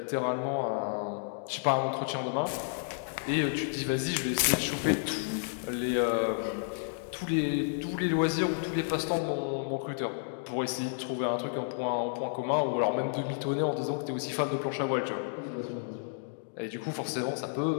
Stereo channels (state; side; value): silent; right; digital silence